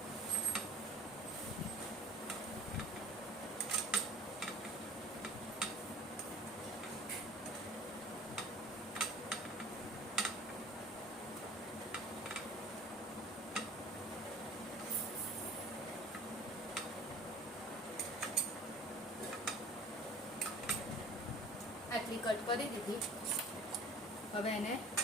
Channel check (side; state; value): both; normal; correlation 0.46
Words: આટલી કટ કરી દીધી. હવે એને